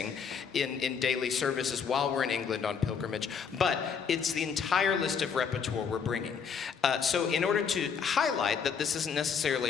in daily services while we're in England on pilgrimage, but it's the entire list of repertoire we're bringing. So in order to highlight that this isn't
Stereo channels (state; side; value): quieter; right; 6.5 dB